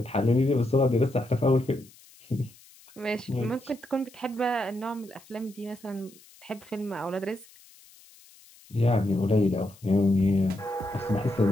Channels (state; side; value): noise; left; hiss, 25 dB below the sound